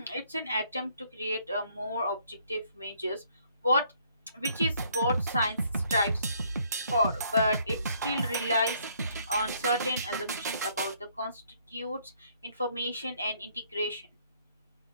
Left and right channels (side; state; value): both; inverted; correlation -0.66